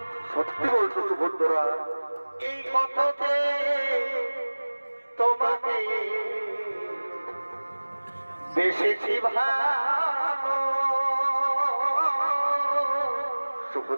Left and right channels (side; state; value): both; inverted; correlation -1.00